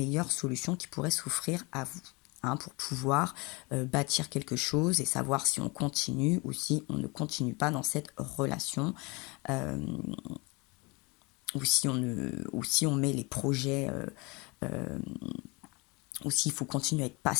solutions qui pourraient s'offrir à vous. Pour pouvoir bâtir quelque chose et savoir si on continue ou si on ne continue pas dans cette relation, ou si on met les projets, ou s'il faut continuer à être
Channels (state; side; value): quieter; right; 27.3 dB